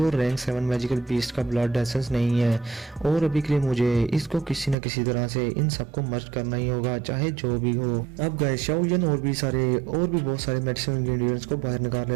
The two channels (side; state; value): left; drops out; at 4.8 s